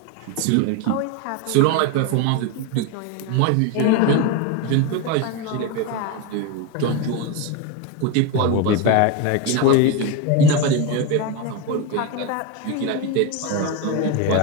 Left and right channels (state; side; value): different; both; correlation 0.03